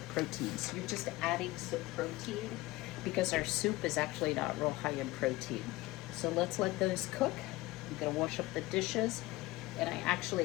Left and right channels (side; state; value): right; quieter; 19.4 dB